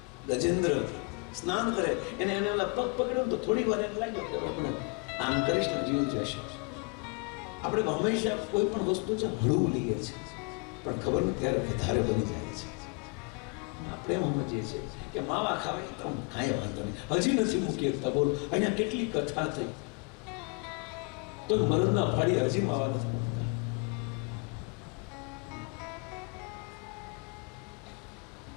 ગજેન્દ્ર સ્નાન કરે, એને ઓલા પગ પકડ્યો તો થોડી વાર એમ લાગ્યો કે આપણે આમ કરીશ ને જીવ જશે. આપણે હંમેશા કોઈ પણ વસ્તુ છે હળવું લઈએ છીએ, પણ ખબર નથી ત્યારે વધારે બની જાય છે. આપણે એમ સમજીએ છીએ કે માવા ખાવાય તો કાંઈ વાંધો નહીં, હજી નથી મૂકી શકતા. બોલો, અહીંયા કેટલી કથા થઈ તો મરદના ફાડી હજી માવા નથી મૂકતા.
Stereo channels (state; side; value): quieter; right; 32.1 dB